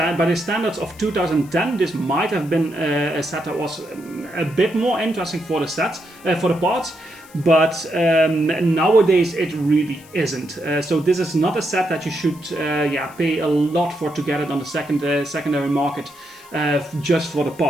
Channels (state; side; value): noise; left; hiss, 24 dB below the sound